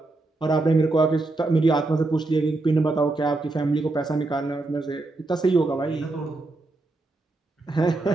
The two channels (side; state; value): left; quieter; 3.1 dB